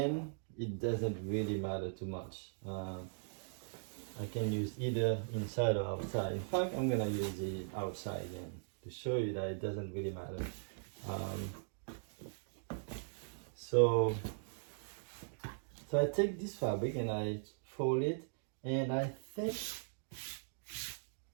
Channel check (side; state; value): left; silent; digital silence